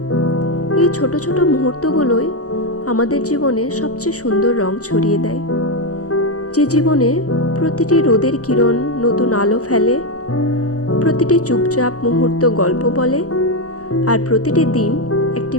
এই ছোট ছোট মুহূর্তগুলোই আমাদের জীবনে সবচেয়ে সুন্দর রং ছড়িয়ে দেয়। যে জীবনে প্রতিটি রোদের কিরণ নতুন আলো ফেলে, প্রতিটি চুপচাপ মুহূর্ত গল্প বলে, আর প্রতিটি দিন একটি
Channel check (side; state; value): right; late; 0.66 ms